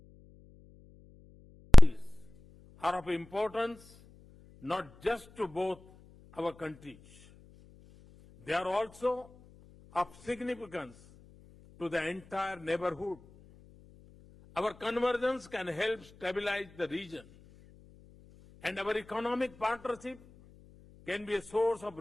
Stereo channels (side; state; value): left; noise; hum, 25 dB below the sound